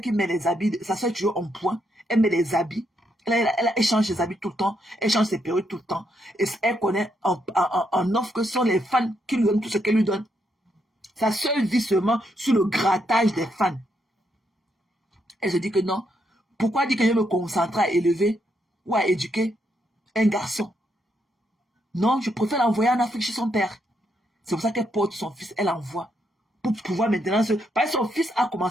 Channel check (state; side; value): normal; both; correlation 0.78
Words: qui met les habits, sa soeur est toujours en point, elle met les habits, elle change ses habits tout le temps, elle change ses perruques tout le temps, et elle connaît en offre que ce sont les fans qui lui donnent tout ce qu'elle lui donne. Sa soeur vit seulement sur le grattage des fans. Elle se dit que non, pourquoi dire que je me concentre à élever ou à éduquer un garçon? Non, je préfère l'envoyer en Afrique chez son père. C'est pour ça qu'elle porte son fils, elle envoie. Pour pouvoir maintenant se... Parce que son fils a